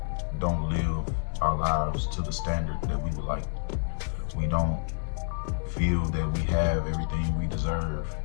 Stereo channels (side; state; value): right; silent; digital silence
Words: don't live our lives to the standard that we would like. We don't feel that we have everything we deserve.